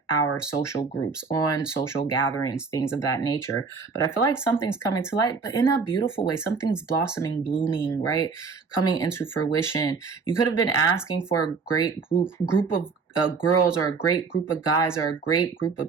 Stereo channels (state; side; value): quieter; left; 4.9 dB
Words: our social groups, on social gatherings, things of that nature. But I feel like something's coming to light, but in a beautiful way. Something's blossoming, blooming, right? Coming into fruition. You could have been asking for a great group of girls, or a great group of guys, or a great group